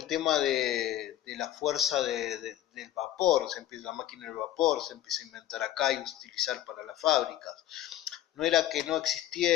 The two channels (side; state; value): right; quieter; 13.1 dB